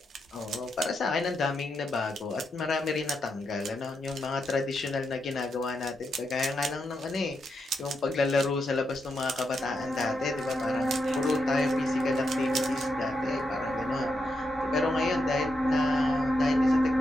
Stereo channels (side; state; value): both; normal; correlation 0.84